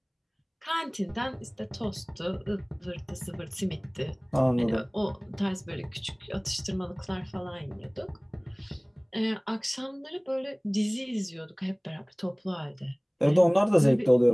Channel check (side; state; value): both; identical; correlation 1.00